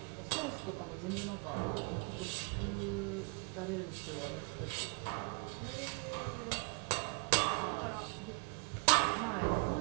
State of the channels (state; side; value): quieter; left; 35.6 dB